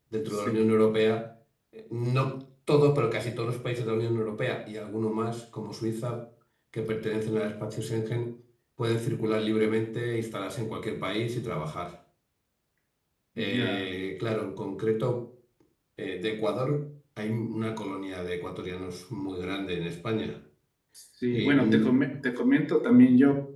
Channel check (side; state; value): both; identical; correlation 1.00